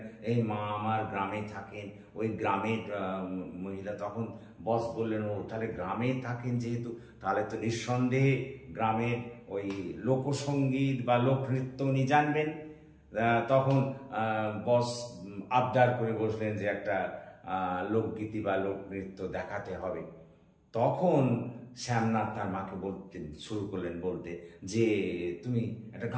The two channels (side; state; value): both; identical; correlation 1.00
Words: এই মা আমার গ্রামে থাকেন, ওই গ্রামের মহিলা। তখন বস বললেন ও তাহলে গ্রামে থাকেন যেহেতু, তাহলে তো নিঃসন্দেহে গ্রামের ওই লোকসঙ্গীত বা লোকনৃত্য উনি জানবেন। তখন বস আবদার করে বসলেন যে একটা লোকগীতি বা লোকনৃত্য দেখাতে হবে। তখন শ্যামনাথ তার মাকে শুরু করলেন বলতে যে তুমি একটা